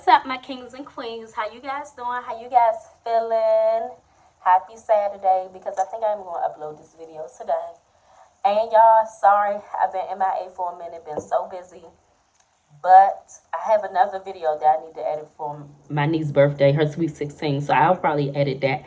up, my kings and queens? How you guys doing? How you guys feeling? Happy Saturday, because I think I'm going to upload this video today. And y'all, sorry, I've been MIA for a minute, been so busy. But I have another video that I need to edit for my niece's birthday, her sweet 16. So I'll probably edit that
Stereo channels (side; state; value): both; identical; correlation 1.00